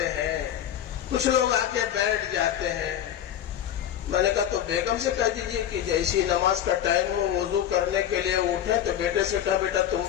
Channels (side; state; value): right; quieter; 10.6 dB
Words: ہیں، کچھ لوگ آ کے بیٹھ جاتے ہیں. میں نے کہا تو بیگم سے کہہ دیجئے کہ جیسی نماز کا ٹائم ہو وضو کرنے کے لیے اٹھے تو بیٹے سے کہا بیٹا تم